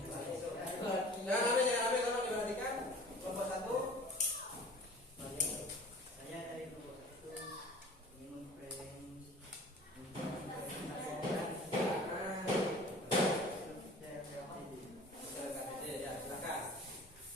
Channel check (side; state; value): both; normal; correlation 0.45